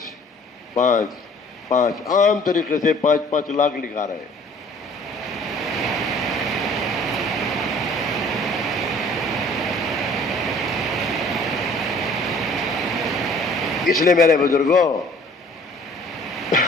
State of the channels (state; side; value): normal; both; correlation 0.53